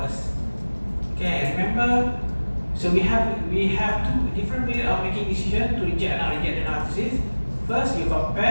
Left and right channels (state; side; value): inverted; both; correlation -1.00